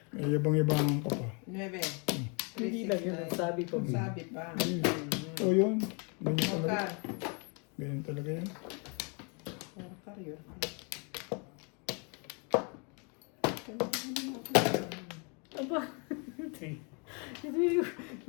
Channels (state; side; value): quieter; right; 34.9 dB